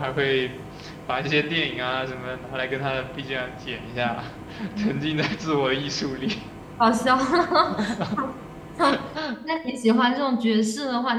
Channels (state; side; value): identical; both; correlation 1.00